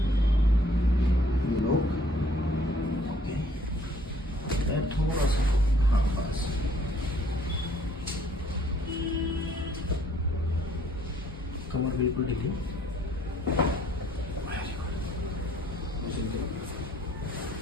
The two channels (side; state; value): both; normal; correlation 0.61